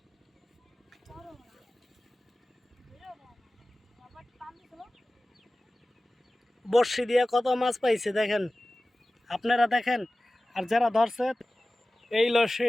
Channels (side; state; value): both; normal; correlation 0.97